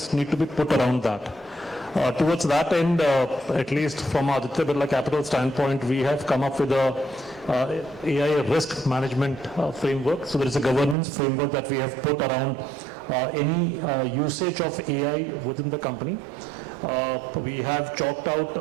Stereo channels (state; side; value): drops out; left; at 11.0 s